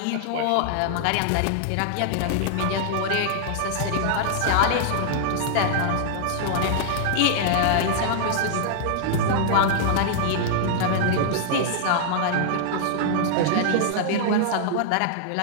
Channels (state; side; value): different; both; correlation -0.01